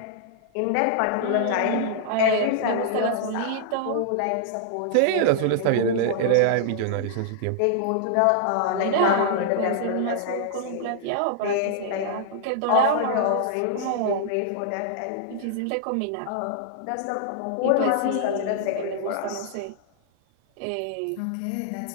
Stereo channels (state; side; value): different; both; correlation -0.01